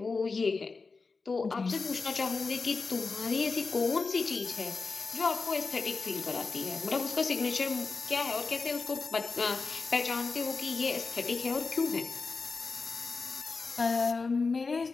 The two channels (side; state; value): right; quieter; 4.3 dB